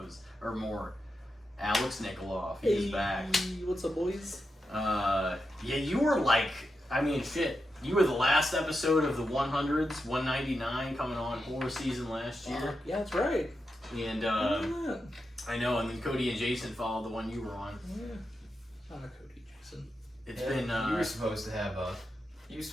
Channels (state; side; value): normal; both; correlation 0.87